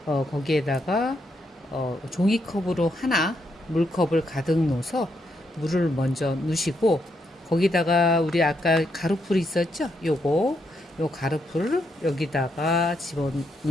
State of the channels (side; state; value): both; normal; correlation 0.79